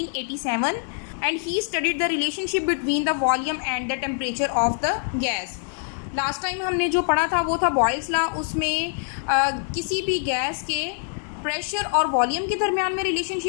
and he studied the relationship between the volume and the temperature of the gas. Last time हमने जो पढ़ा था वो था बॉयल्स लॉ। उसमें किसी भी गैस के प्रेशर और वॉल्यूम के दरमियान में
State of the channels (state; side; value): silent; right; 62 dB below the other